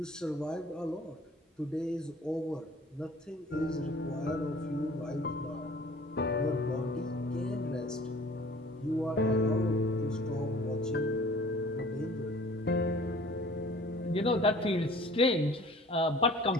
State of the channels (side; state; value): both; normal; correlation 0.49